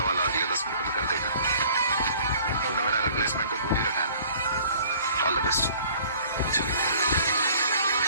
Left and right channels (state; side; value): inverted; both; correlation -0.52